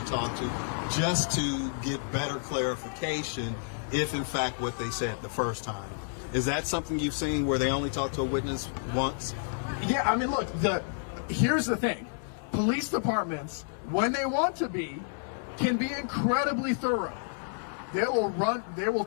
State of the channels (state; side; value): silent; right; digital silence